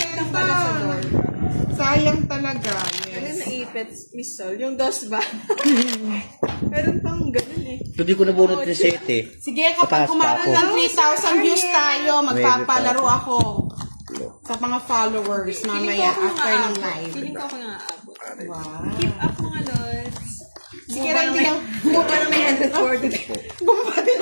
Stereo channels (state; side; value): inverted; both; correlation -1.00